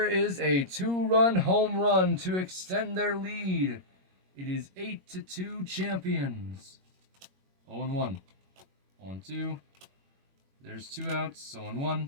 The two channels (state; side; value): late; left; 21 ms